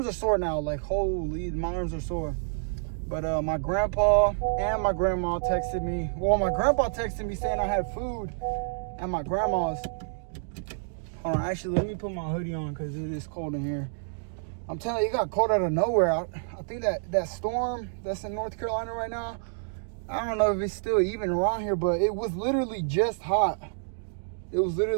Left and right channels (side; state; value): left; silent; digital silence